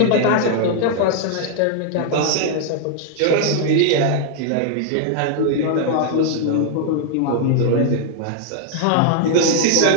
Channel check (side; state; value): both; different; correlation 0.00